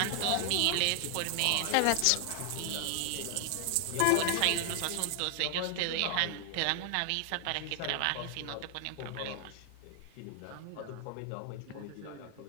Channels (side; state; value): both; different; correlation 0.00